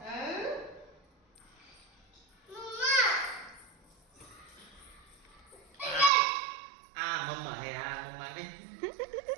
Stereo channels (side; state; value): left; drops out; at 6.1 s